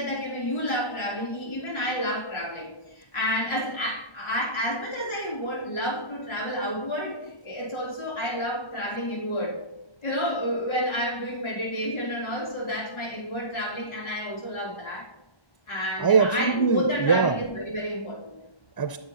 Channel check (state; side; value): late; right; 1.0 ms